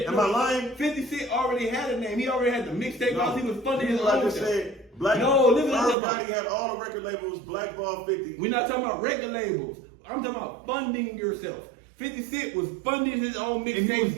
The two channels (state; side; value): drops out; left; at 6.0 s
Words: I lying? 50 Cent already had a name. He already had the mixtape because he was funding his own. I just said, Irv Gotti had all the record labels, blackball 50. We're not talking about record labels. I'm talking about funding yourself. 50 Cent was funding his own mixtape. And he was